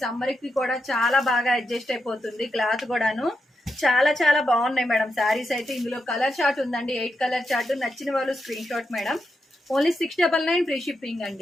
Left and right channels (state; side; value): normal; both; correlation 0.86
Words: సమ్మర్ కి కూడా చాలా బాగా అడ్జస్ట్ అయిపోతుంది. క్లాత్ కూడాను చాలా చాలా బాగున్నాయి మేడం శారీస్ అయితే. ఇందులో కలర్ చార్ట్ ఉందండి, 8 కలర్ చార్ట్. నచ్చిన వాళ్ళు screen shot madam. Only 699 free shipping